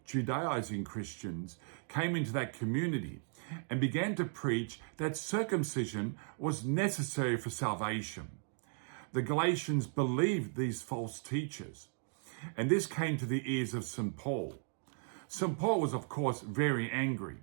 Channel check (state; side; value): silent; left; 54 dB below the other